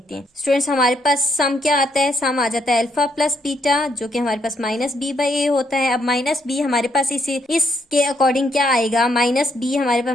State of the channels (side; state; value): both; normal; correlation 0.74